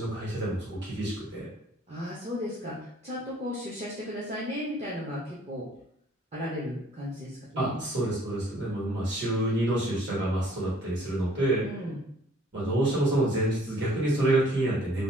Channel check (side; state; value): both; normal; correlation 0.58